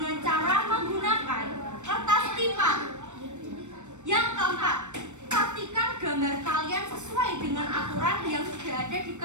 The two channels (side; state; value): left; late; 0.84 ms